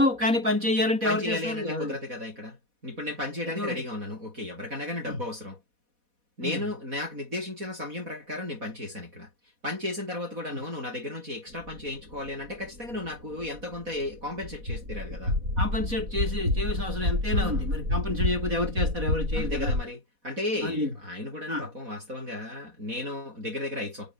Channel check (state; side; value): late; left; 4.1 ms